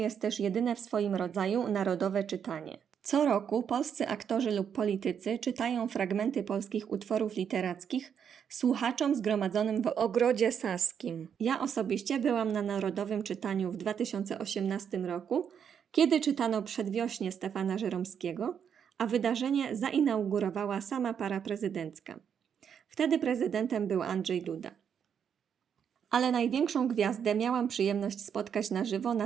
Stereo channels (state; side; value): quieter; left; 7.8 dB